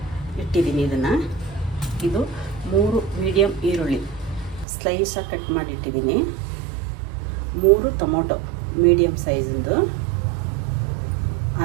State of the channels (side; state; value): left; drops out; at 4.7 s